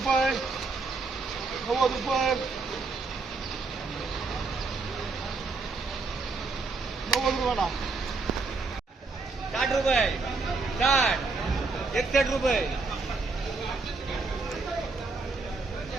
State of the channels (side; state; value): left; quieter; 4.0 dB